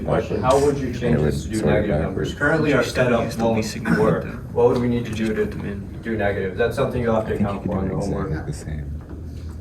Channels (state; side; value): identical; both; correlation 1.00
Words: question. How would you change Yeah, this to do sort it negative backwards. numbers? Currently, our setup won't work. What would we need to do to do negative? That's something you'll have I to think you account could for in do the it homework. exactly the same.